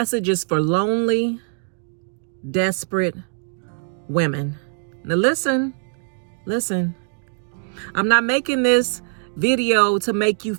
is for lonely, desperate women. Now listen. I'm not making this video to make you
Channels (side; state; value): left; silent; digital silence